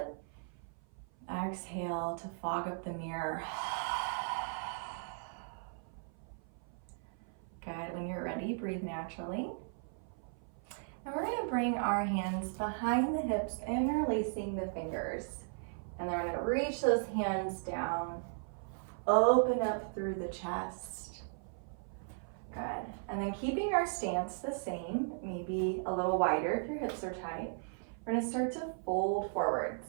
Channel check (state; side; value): silent; left; 53 dB below the other